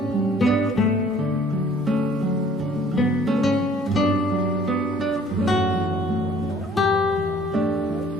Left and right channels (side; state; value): both; normal; correlation 0.57